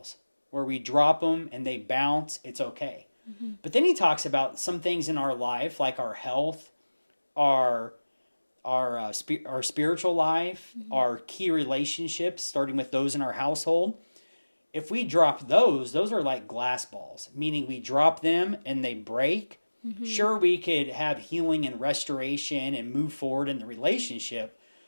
where we drop them and they bounce, it's okay. Mm-hmm. But then he talks about some things in our life, like our health, our our spiritual life, Mm-hmm. our key relationships, starting with those in our household. If we drop those are like glass balls, meaning we drop them and they break. Mm-hmm. Sure, we could have healing and restoration and move forward in the relationship,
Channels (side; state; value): both; inverted; correlation -1.00